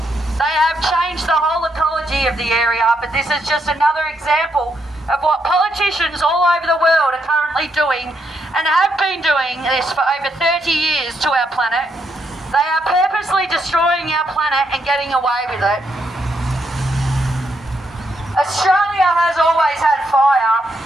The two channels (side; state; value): both; normal; correlation 0.78